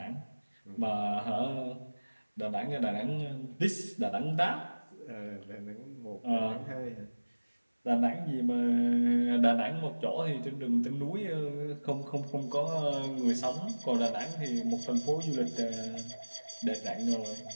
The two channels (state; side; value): inverted; both; correlation -1.00